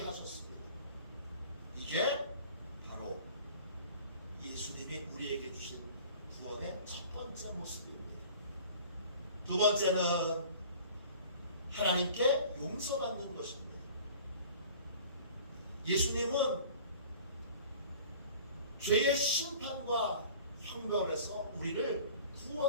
하셨습니다. 이게 바로 예수님이 우리에게 주신 구원의 첫 번째 모습입니다. 두 번째는 하나님께 용서받는 것입니다. 예수님은 죄의 심판과 형벌에서 우리를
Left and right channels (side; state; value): both; inverted; correlation -0.45